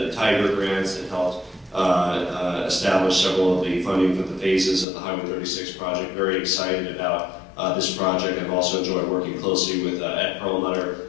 Tiger grants that helped establish several of the funding for the phases of the Highway 36 project. Very excited about this project. I've also enjoyed working closely with Ed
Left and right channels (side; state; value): right; drops out; at 4.9 s